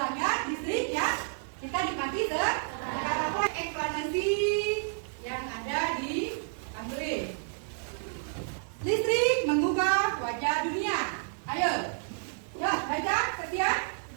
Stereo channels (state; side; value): silent; left; digital silence